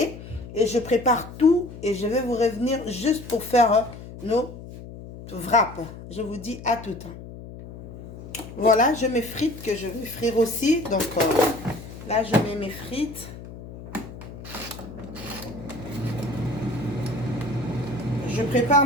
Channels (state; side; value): noise; left; hum, 14 dB below the sound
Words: Et je prépare tout. Et je vais vous revenir juste pour faire nos wraps. Je vous dis à tout. Voilà, je mets frites que je vais frire aussi. Donc, là, je mets mes frites. Je prépare